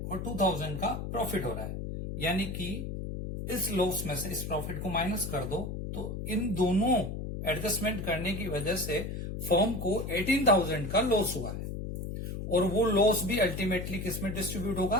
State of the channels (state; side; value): noise; left; hum, 5 dB below the sound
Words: और 2,000 का प्रॉफिट हो रहा है, यानी कि इस लॉस में से इस प्रॉफिट को माइनस कर दो, तो इन दोनों एडजस्टमेंट करने की वजह से फर्म को 18,000 का लॉस हुआ है, और वो लॉस भी अल्टीमेटली किस में डिस्ट्रीब्यूट होगा?